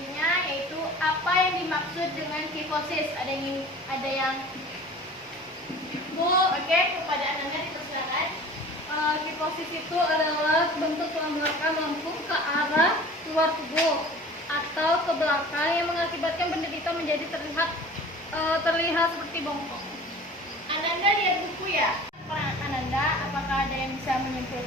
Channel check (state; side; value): normal; both; correlation 0.42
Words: yaitu apa yang dimaksud dengan kifosis. Ada yang Bu, oke, kepada Ananda dipersilakan. Kifosis itu adalah bentuk tulang belakang melengkung ke arah luar tubuh atau ke belakang yang mengakibatkan benda hitam menjadi terlihat seperti bongkok. Ananda lihat buku ya? Ananda, apakah ada yang bisa